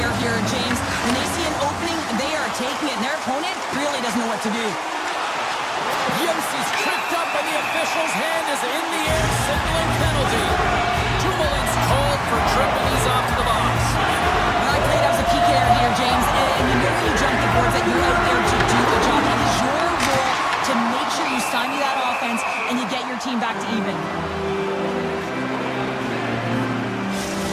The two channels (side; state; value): both; identical; correlation 1.00